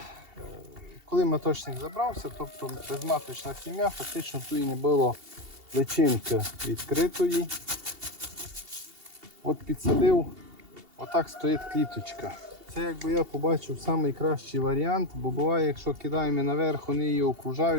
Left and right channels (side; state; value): left; late; 2.8 ms